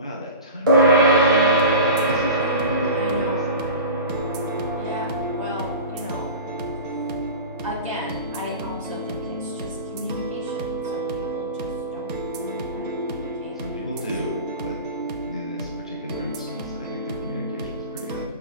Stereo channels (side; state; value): both; inverted; correlation -0.33